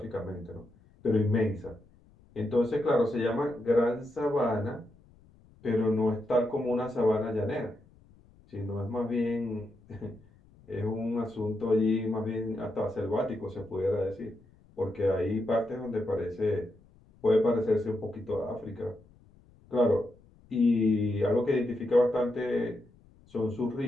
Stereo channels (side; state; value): left; noise; rumble, 28 dB below the sound